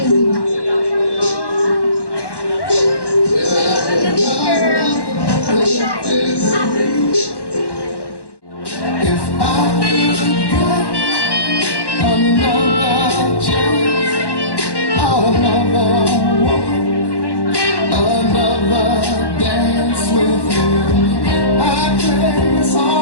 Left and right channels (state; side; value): late; right; 1.1 ms